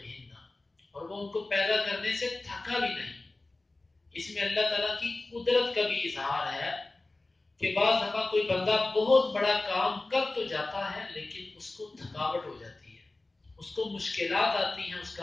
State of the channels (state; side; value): quieter; right; 3.0 dB